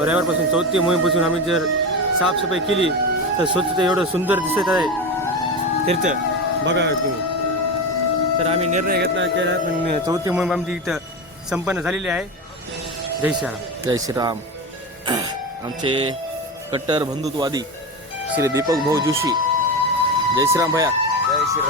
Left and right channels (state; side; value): normal; both; correlation 0.21